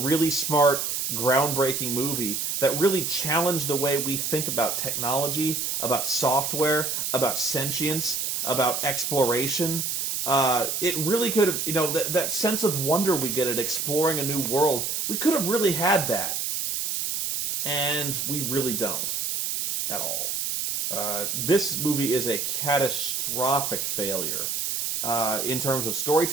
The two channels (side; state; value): right; noise; hiss, 1 dB below the sound